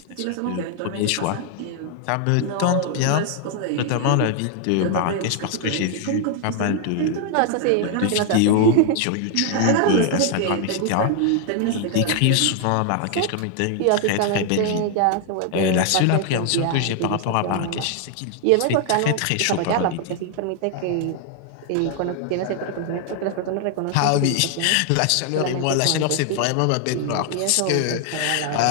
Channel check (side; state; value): both; different; correlation 0.00